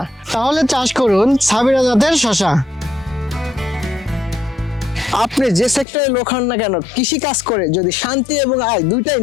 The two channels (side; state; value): right; drops out; at 5.9 s